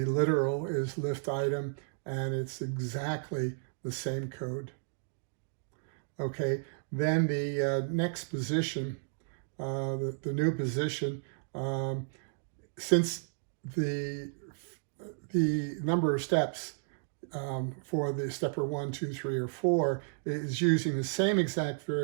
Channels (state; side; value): silent; left; digital silence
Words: literal is lift item, and it's exactly the same code. Okay, then the next position, the new position, since the number of steps for the stepper 1, 2, 3, or 4 is using the same exact